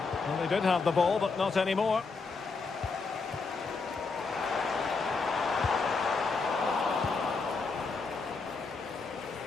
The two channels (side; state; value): right; quieter; 4.4 dB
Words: Well, they did have the ball, but not anymore.